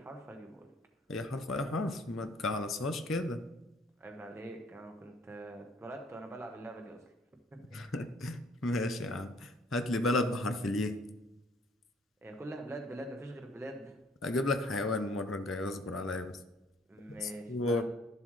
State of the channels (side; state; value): both; normal; correlation 0.60